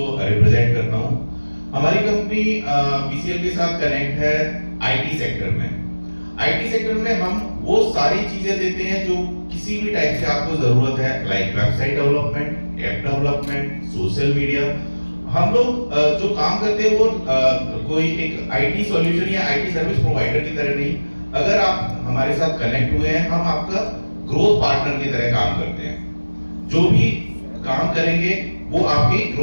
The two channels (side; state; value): both; inverted; correlation -1.00